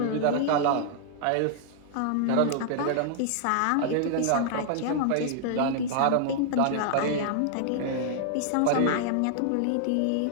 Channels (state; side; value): different; both; correlation -0.01